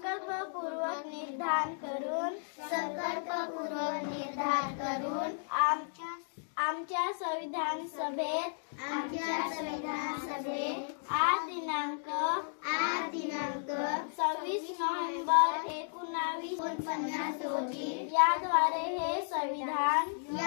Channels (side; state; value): right; silent; digital silence